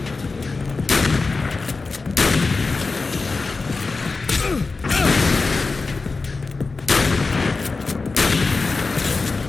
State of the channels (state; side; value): quieter; right; 4.0 dB